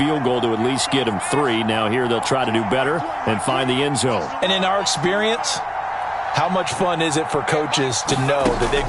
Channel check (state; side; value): identical; both; correlation 1.00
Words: goal to at least get them 3. Now here they'll try to do better and find the end zone. And in our experience, how much fun is it for coaches to know that they've